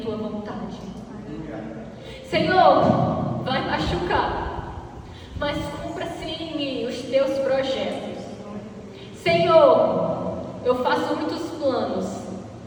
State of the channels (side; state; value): both; identical; correlation 1.00